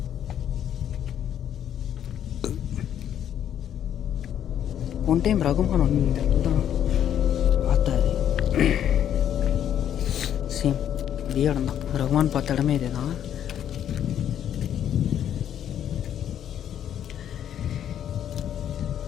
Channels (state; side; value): quieter; right; 10.0 dB